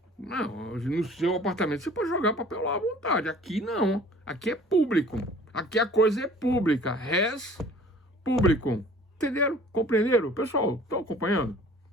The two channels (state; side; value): normal; both; correlation 0.49